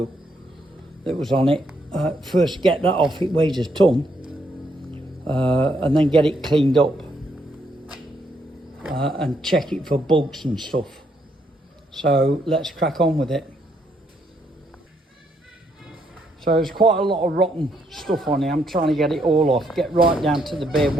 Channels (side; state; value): both; normal; correlation 0.74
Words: that was on it. First get that off, it weighs a ton. And then get it cleaned up. And check it for bugs and stuff. So let's crack on with it. So there's quite a lot of rotten stuff on here. I'm trying to get it all off, get right down to the bare